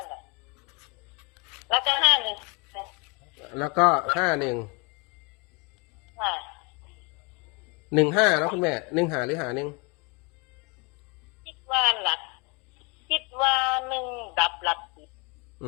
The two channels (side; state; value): right; quieter; 30.5 dB